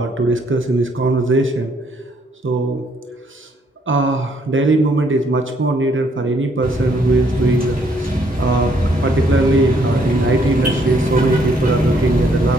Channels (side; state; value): both; normal; correlation 0.68